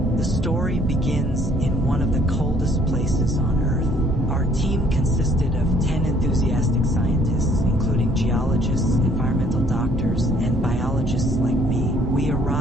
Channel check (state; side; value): normal; both; correlation 0.61